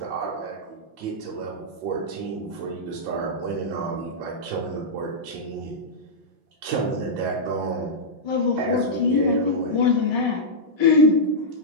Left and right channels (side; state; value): left; late; 5.7 ms